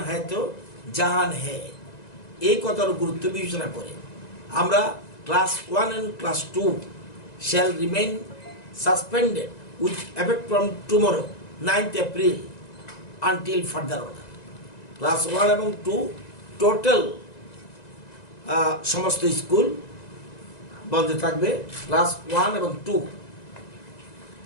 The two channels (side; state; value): right; late; 1.9 ms